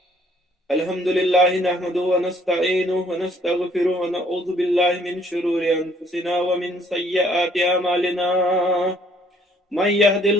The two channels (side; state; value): both; normal; correlation 0.62